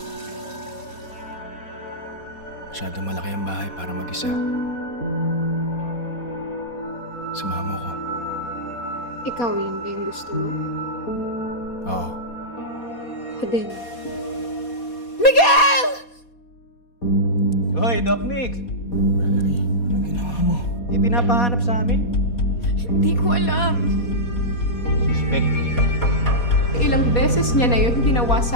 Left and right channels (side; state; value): right; late; 4.2 ms